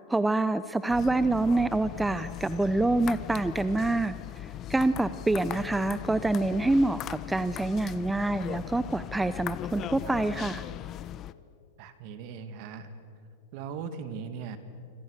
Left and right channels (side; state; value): both; normal; correlation 0.89